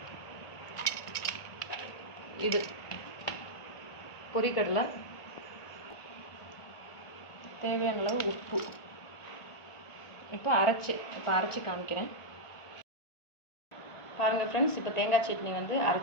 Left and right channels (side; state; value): right; late; 1.5 ms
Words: இது பொரிக்கடலை, தேவையான அளவு உப்பு. இப்போ அரைச்சி காமிக்கிறேன் பாருங்கள் ஃப்ரெண்ட்ஸ். இப்போ தேங்காய் சட்னி